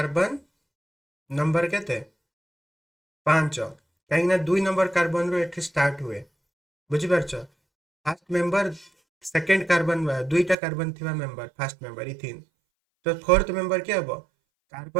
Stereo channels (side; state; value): left; drops out; at 10.6 s